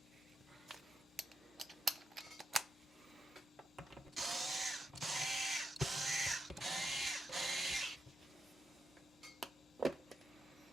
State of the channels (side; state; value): both; normal; correlation 0.85